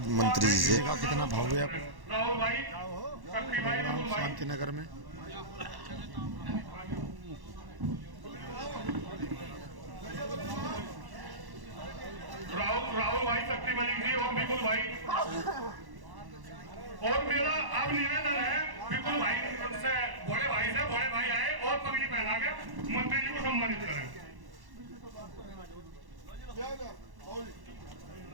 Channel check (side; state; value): left; late; 1.1 ms